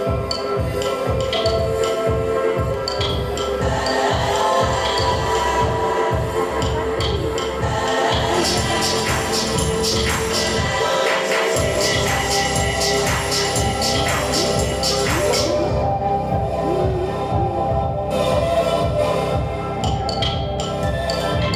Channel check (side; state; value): both; identical; correlation 1.00